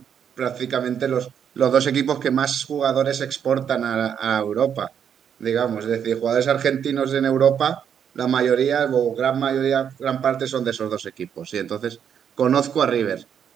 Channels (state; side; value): quieter; left; 8.3 dB